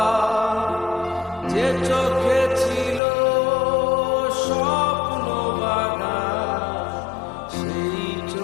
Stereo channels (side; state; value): right; drops out; at 3.0 s